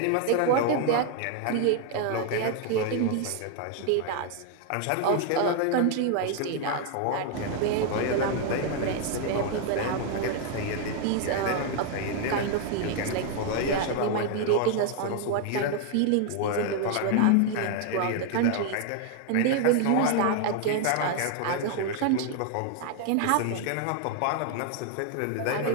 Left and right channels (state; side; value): different; both; correlation 0.00